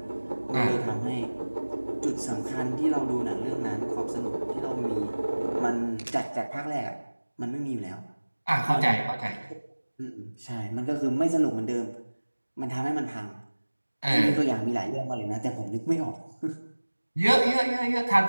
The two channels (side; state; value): both; inverted; correlation -1.00